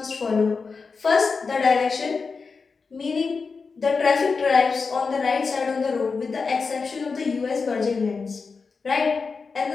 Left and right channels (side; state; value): right; quieter; 4.8 dB